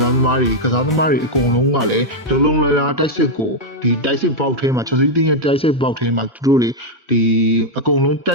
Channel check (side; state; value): both; normal; correlation -0.02